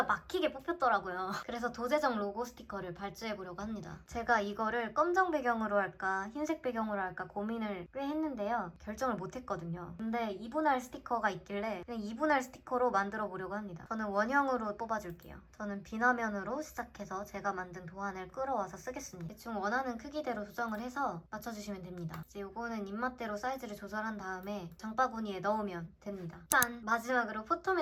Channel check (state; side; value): identical; both; correlation 1.00